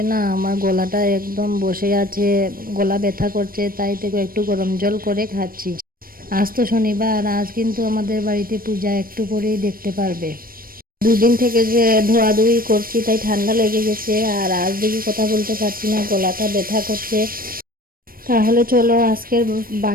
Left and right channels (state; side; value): late; left; 0.42 ms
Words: না আমার গলাটা একদম বসে আছে, গলা ব্যথা করছে, তাই থেকে একটু গরম জল করে খাচ্ছি। আজ তো শনিবার, আজ কিন্তু আমাদের বাড়িতে পূজা, একটু পরেই দেখতে পারবে। দুদিন থেকে যে ধোয়াধুয়ি করছি তাই ঠান্ডা লেগে গেছে, আর আজ দেখি কথা বলতে পারছি না, গলাটা ব্যথা করছে। তাহলে চলো আজকের